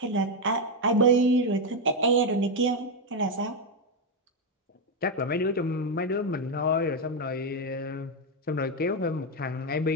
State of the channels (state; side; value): normal; both; correlation 0.05